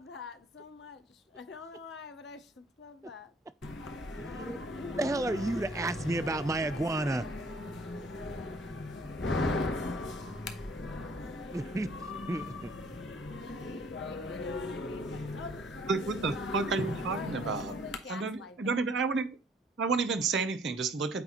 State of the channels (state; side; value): normal; both; correlation 0.59